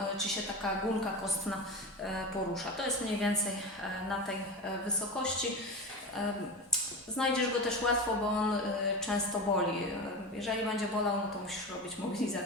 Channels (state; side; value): normal; both; correlation 0.25